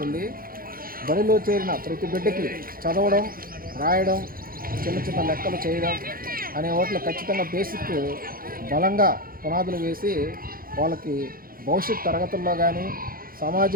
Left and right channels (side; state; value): left; late; 0.42 ms